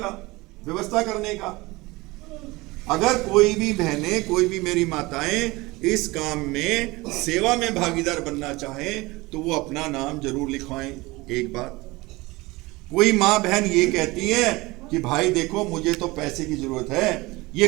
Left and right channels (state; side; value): quieter; left; 22.0 dB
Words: व्यवस्था करने का। अगर कोई भी बहनें, कोई भी मेरी माताएं इस काम में सेवा में भागीदार बनना चाहें तो वो अपना नाम जरूर लिखवाएं। एक बात, कोई माँ बहन ये कहती है कि भाई देखो मुझे तो पैसे की जरूरत है, ये